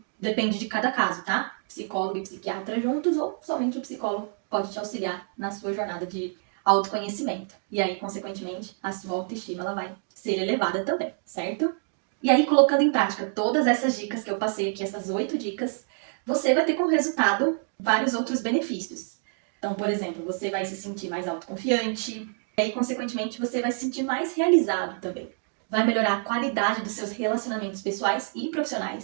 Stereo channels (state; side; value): silent; left; 56 dB below the other